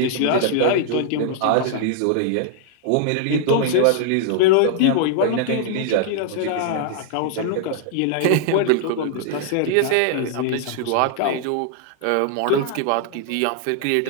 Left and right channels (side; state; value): both; different; correlation -0.01